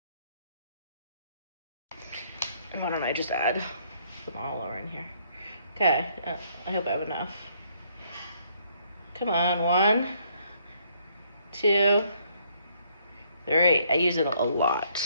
Why don't I just add them all over in here? Okay, I hope I have enough. Come on, 1, 2, 3. I use it a lot.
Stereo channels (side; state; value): both; inverted; correlation -0.67